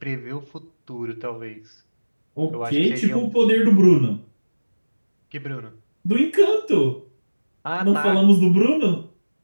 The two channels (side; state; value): both; inverted; correlation -1.00